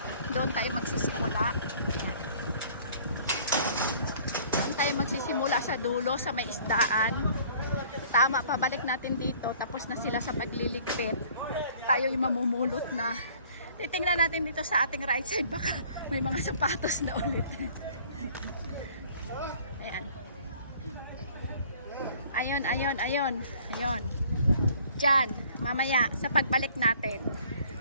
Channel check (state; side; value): inverted; both; correlation -0.54